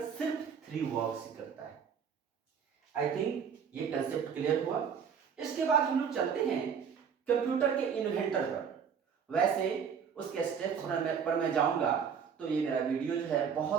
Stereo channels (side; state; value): left; quieter; 7.1 dB